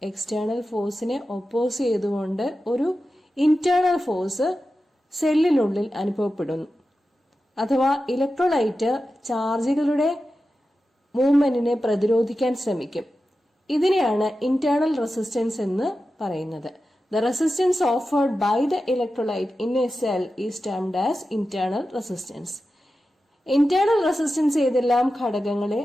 എക്സ്റ്റേണൽ ഫോഴ്സിനെ ഒപ്പോസ് ചെയ്തുകൊണ്ട് ഒരു ഇന്റേണൽ ഫോഴ്സ് സെല്ലിനുള്ളിൽ അനുഭവപ്പെടുന്നു. അഥവാ ഇലക്ട്രോലൈറ്റ് ചാർജുകളുടെ മൂവ്മെന്റിനെ പ്രതിരോധിക്കാൻ ശ്രമിക്കും. ഇതിനെയാണ് ഇന്റേണൽ റെസിസ്റ്റൻസ് എന്ന് പറയുന്നത്. The resistance offered by the electrolyte in a cell is termed as internal resistance. Internal resistance ഏതെല്ലാം ഘടകങ്ങളെ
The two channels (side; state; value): both; normal; correlation 0.92